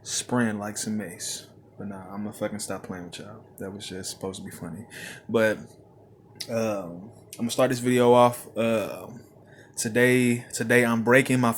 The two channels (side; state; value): both; identical; correlation 1.00